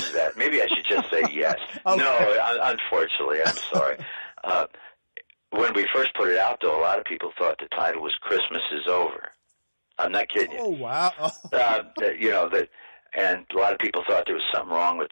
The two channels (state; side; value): inverted; both; correlation -1.00